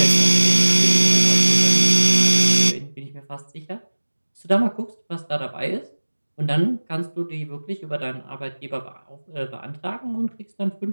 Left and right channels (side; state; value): both; inverted; correlation -1.00